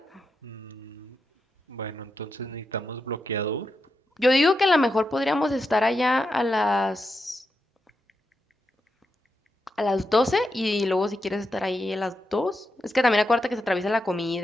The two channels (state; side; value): normal; both; correlation 0.86